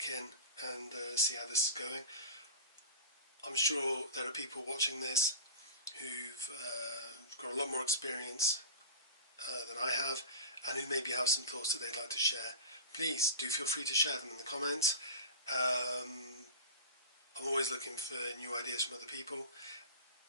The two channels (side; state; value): both; inverted; correlation -0.31